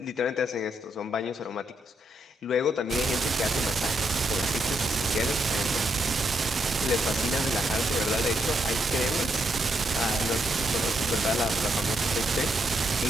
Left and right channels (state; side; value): normal; both; correlation 0.79